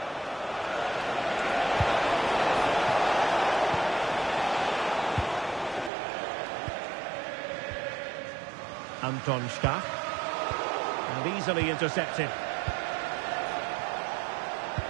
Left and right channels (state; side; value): drops out; left; at 5.9 s